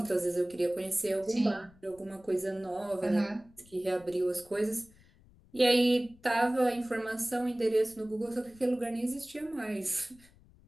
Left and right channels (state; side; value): noise; left; rumble, 27 dB below the sound